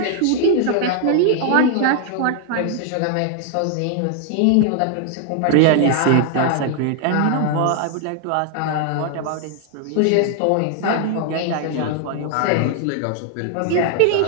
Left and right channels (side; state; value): both; different; correlation 0.00